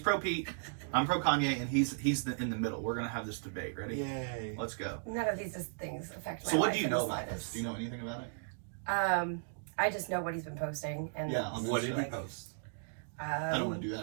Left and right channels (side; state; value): left; silent; digital silence